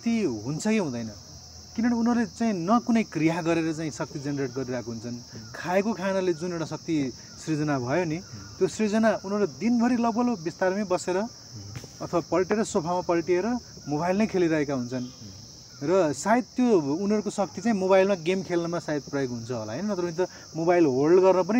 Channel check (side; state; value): both; identical; correlation 1.00